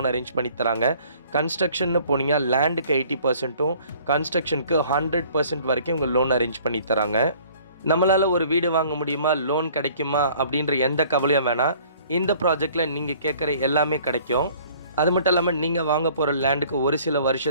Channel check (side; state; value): both; inverted; correlation -0.54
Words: அரேஞ்ச் பண்ணி தராங்க. கன்ஸ்ட்ரக்ஷன்னு போனீங்கன்னா லேண்டுக்கு 80%ம் கன்ஸ்ட்ரக்ஷனுக்கு 100% வரைக்கும் இவங்க லோன் அரேஞ்ச் பண்ணி தராங்க. நம்மளால் ஒரு வீடு வாங்க முடியுமா, லோன் கிடைக்குமா அப்படின்ற எந்த கவலையும் வேணாம். இந்த ப்ராஜெக்டில் நீங்கள் கேட்குற எல்லாமே கிடைக்கும். அது மட்டும் இல்லாமல் நீங்கள் வாங்க போகிற லேண்டுக்கு ஒரு சில